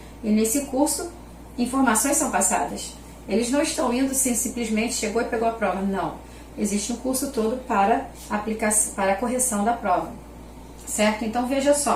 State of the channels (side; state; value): both; identical; correlation 1.00